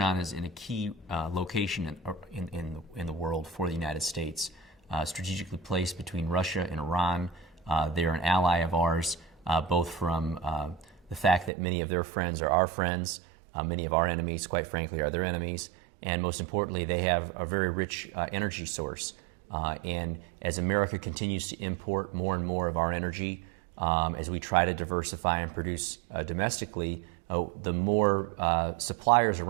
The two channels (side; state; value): left; drops out; at 11.5 s